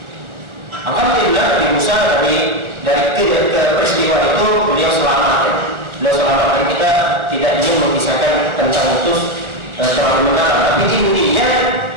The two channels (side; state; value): left; late; 1.4 ms